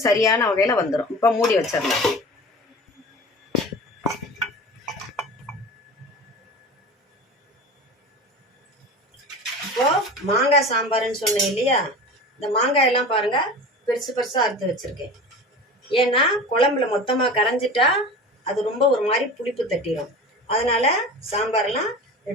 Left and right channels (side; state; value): both; normal; correlation 0.34